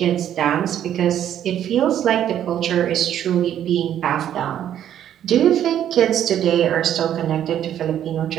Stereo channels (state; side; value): quieter; left; 10.5 dB